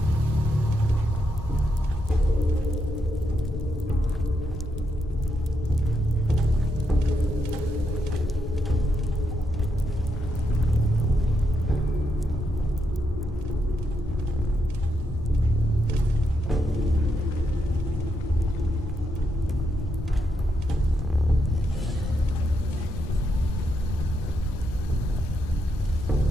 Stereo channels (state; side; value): normal; both; correlation 0.81